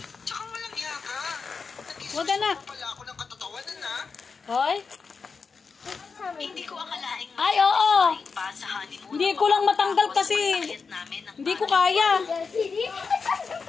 Tsaka walang yaka. Huwag ka na. Nag-isip pala ako ng katatawanan na. Hoy? Hindi ko akalaing Ay, oo. pa sa honeymoon. Hindi ko lang matanggal kasi hindi ko kaya.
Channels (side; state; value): right; quieter; 5.1 dB